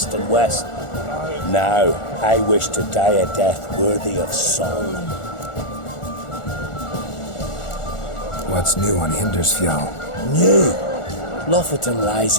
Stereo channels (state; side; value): late; right; 1.4 ms